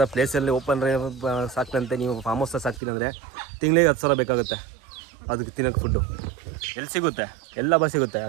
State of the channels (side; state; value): left; drops out; at 2.8 s